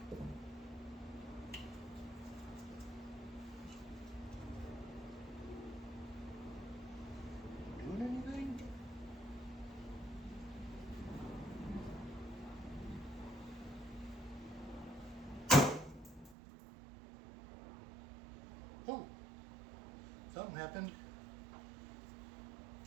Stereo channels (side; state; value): left; drops out; at 16.4 s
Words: doing anything? Oh, something happened.